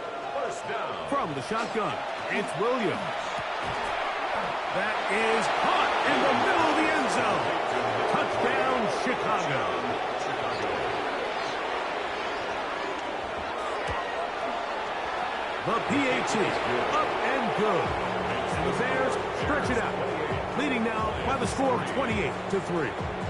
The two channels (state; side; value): identical; both; correlation 1.00